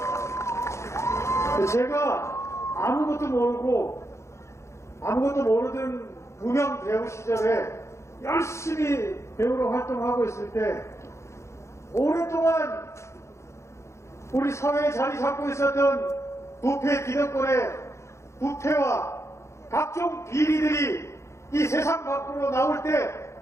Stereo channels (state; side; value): late; right; 0.14 ms